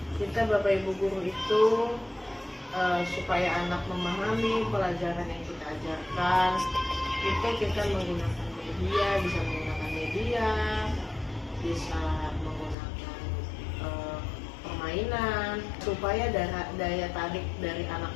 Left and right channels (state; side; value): drops out; right; at 12.8 s